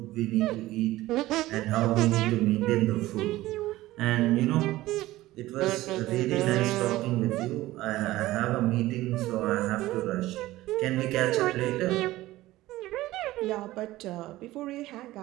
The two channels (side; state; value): left; quieter; 16.9 dB